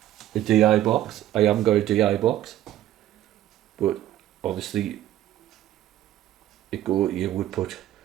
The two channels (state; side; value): quieter; left; 13.1 dB